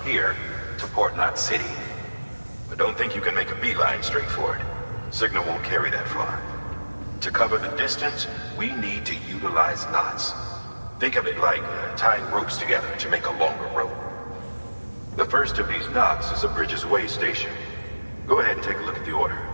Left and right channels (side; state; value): both; inverted; correlation -1.00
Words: here to Port Knot City. But don't think you can make a beeline straight for it. Signal won't carry that far. To cover the distance, we need to utilize knots. Think of it like tying ropes together to make a longer rope. The first of these knots is a Bridges Way station. Go ahead and take a look at the order.